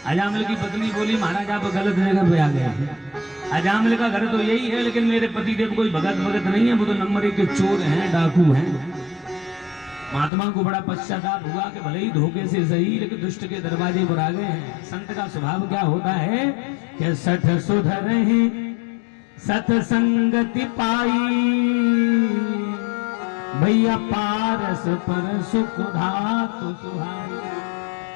अजामिल की पत्नी बोली, महाराज आप गलत जगह पे आ गए। अजामिल का घर तो यही है, लेकिन मेरे पतिदेव कोई भगत नहीं है, वो तो नंबर 1 के चोर हैं, डाकू हैं। महात्मा को बड़ा पश्चाताप हुआ कि भले ही धोखे से सही, लेकिन दुष्ट के दरवाजे पर आ गए हैं। संत का स्वभाव क्या होता है कि सठ सुधरहि सत्संगति पाई, भैया पारस पर सुख धातु सुहाई।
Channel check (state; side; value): drops out; right; at 10.3 s